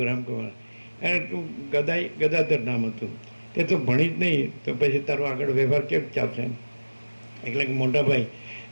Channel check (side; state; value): both; inverted; correlation -1.00